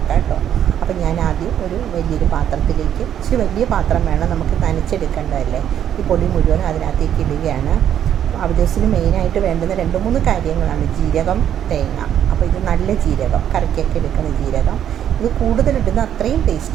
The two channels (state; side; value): quieter; left; 9.9 dB